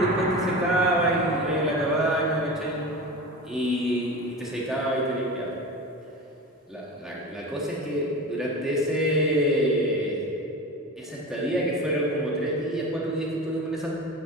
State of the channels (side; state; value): both; normal; correlation 0.30